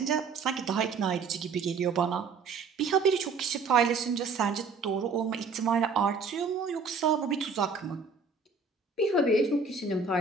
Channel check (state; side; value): quieter; left; 4.8 dB